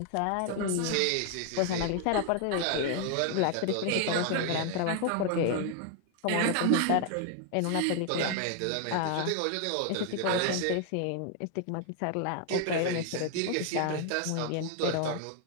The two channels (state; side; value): different; both; correlation 0.00